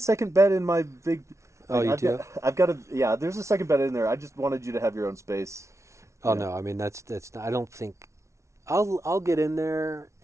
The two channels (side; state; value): left; late; 0.14 ms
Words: bed in my big. Oh, you do? I've got a yeah. There's a second bed in there. I just wanted you to have your own space. Oh, Yeah. no. I mean, that's not, I don't think. I'll get in there,